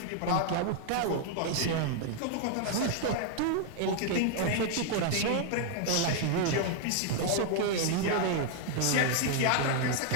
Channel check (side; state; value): both; different; correlation 0.00